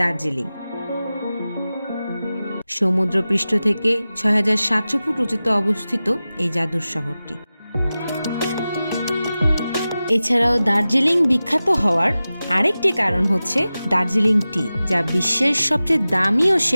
সমুদ্রপৃষ্ঠ থেকে ৬৭০০ ফুট উঁচুতে অবস্থিত এই জাদুর শহরটি। এছাড়াও দার্জিলিং বিখ্যাত হওয়ার আরেকটি কারণ হচ্ছে দার্জিলিং টি, যা বিশ্বের সবচেয়ে দামি ও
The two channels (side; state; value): both; inverted; correlation -0.95